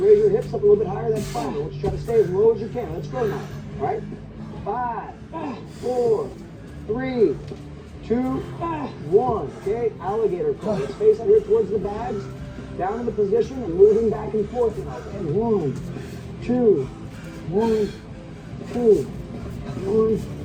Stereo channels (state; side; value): identical; both; correlation 1.00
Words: your hips up a little bit higher, that's fine. I want you to try to stay as low as you can. Let's go now. All right? 5, 4, 3, 2, 1. Okay, alligator curl. Let's face out here towards the bags. Down in the position and moving back and forth now. Okay, 1, 2, 1, 2, 1,